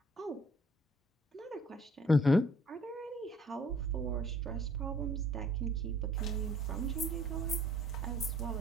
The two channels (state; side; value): normal; both; correlation 0.57